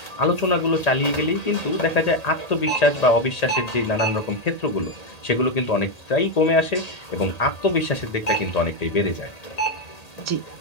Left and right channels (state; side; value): late; right; 1.8 ms